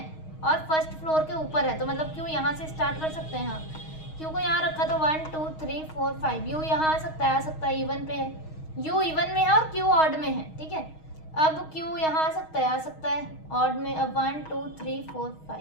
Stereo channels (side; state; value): right; late; 6.4 ms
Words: और फर्स्ट फ्लोर के ऊपर है, तो मतलब Q यहाँ से स्टार्ट कर सकते हैं. हाँ, Q को यहाँ रखा तो 1 2 3 4 5. U यहाँ आ सकता है, इवन पे है. U इवन में है और Q ऑड में है. ठीक है, अब Q यहाँ आ सकता है ऑड में. अब 1 2 3 4